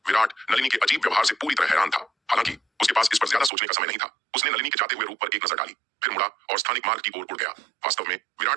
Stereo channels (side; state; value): left; drops out; at 3.5 s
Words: विराट नलिनी के अजीब व्यवहार से पूरी तरह हैरान था। हालांकि उसके पास इस पर ज्यादा सोचने का समय नहीं था। उसने नलिनी के जाते हुए रूप पर एक नजर डाली, फिर मुड़ा और स्थानिक मार्ग की ओर उड़ गया। वास्तव में